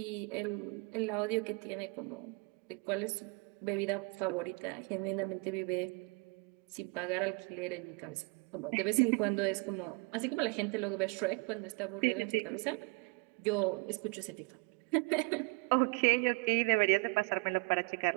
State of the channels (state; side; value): quieter; left; 29.8 dB